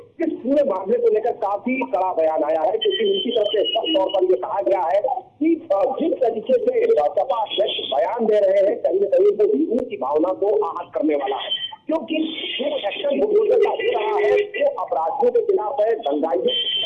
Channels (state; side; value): identical; both; correlation 1.00